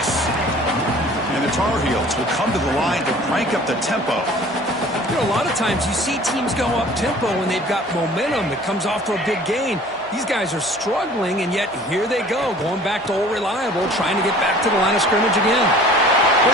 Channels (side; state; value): both; normal; correlation 0.48